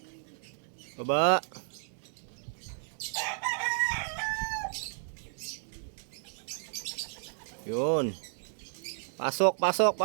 Baba. Yun. Pasok, pasok,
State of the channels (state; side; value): silent; left; digital silence